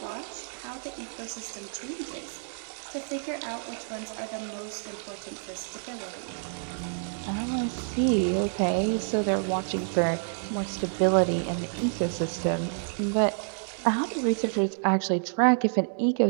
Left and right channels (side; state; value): left; silent; digital silence